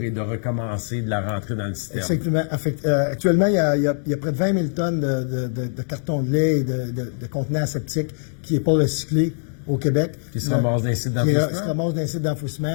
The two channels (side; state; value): right; silent; 58 dB below the other